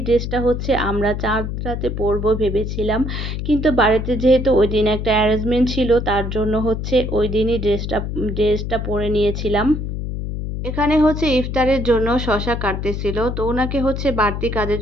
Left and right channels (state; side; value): noise; left; hum, 4 dB below the sound